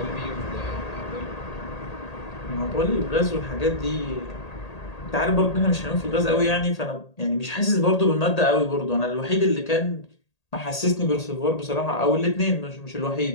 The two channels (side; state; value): right; late; 1.8 ms